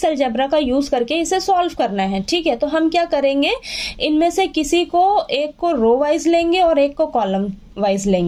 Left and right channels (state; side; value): identical; both; correlation 1.00